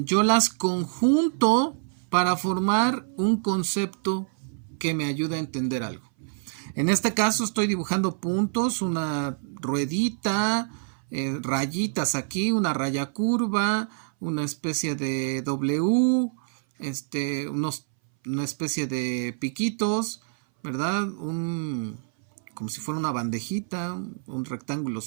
las conjunto para formar un concepto que me ayude a entender algo. En este caso estoy dibujando puntos, una ruedita, rayitas aquí, una raya curva, una especie de W, una especie de piquitos, ¿verdad? Como si fuera una bandejita, un rectángulo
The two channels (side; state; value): left; silent; 59 dB below the other